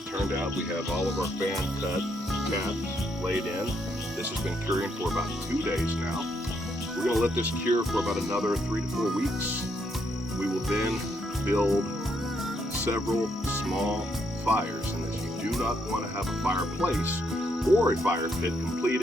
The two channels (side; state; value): both; normal; correlation 0.76